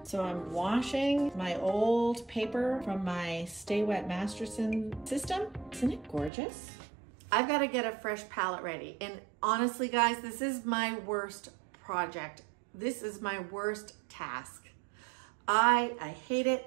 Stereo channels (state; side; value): drops out; left; at 6.3 s